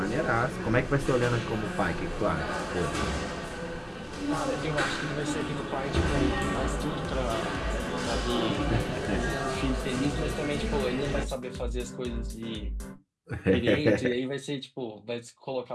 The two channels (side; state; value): both; identical; correlation 1.00